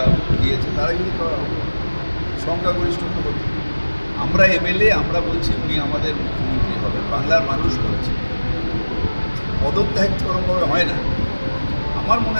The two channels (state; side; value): inverted; both; correlation -1.00